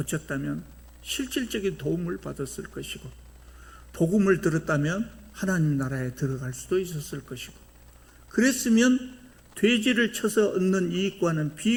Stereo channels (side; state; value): both; identical; correlation 1.00